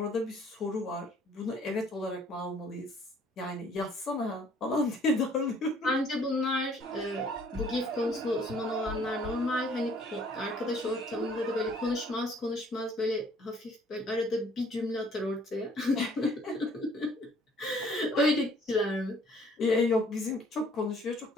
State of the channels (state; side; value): normal; both; correlation 0.59